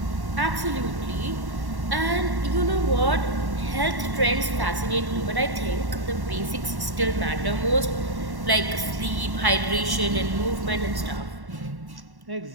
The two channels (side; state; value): left; late; 1.1 ms